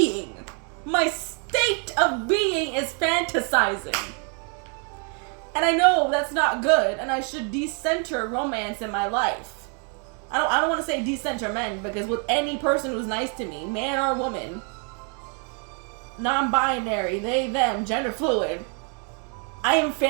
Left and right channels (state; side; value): quieter; left; 39.7 dB